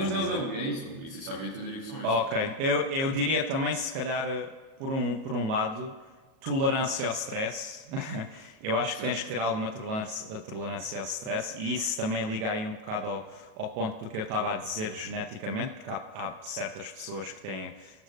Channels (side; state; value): left; late; 37 ms